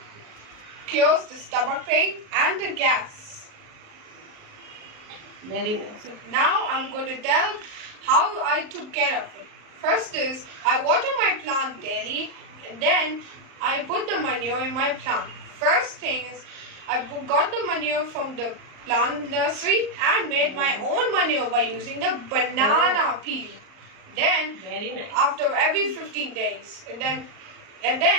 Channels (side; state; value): left; late; 38 ms